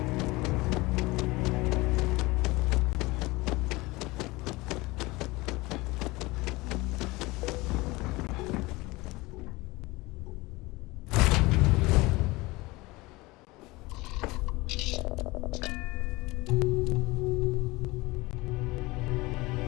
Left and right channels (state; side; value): quieter; right; 22.0 dB